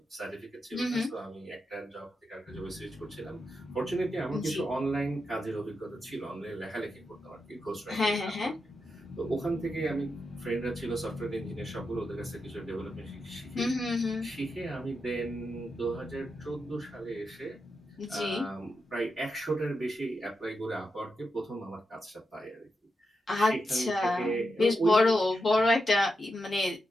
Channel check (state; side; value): normal; both; correlation 0.86